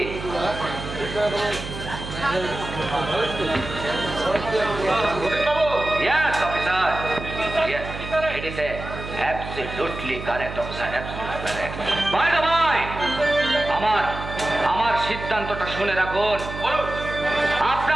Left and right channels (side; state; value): right; noise; hum, 9 dB below the sound